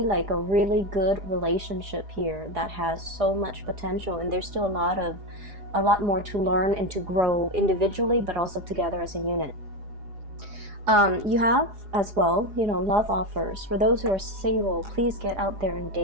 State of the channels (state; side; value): late; left; 4.9 ms